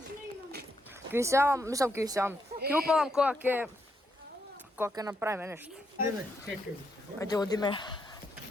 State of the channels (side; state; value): both; normal; correlation 0.79